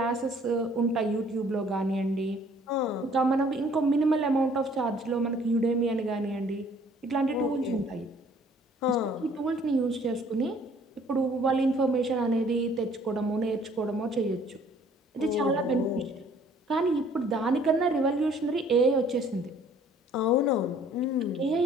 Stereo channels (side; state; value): both; normal; correlation 0.57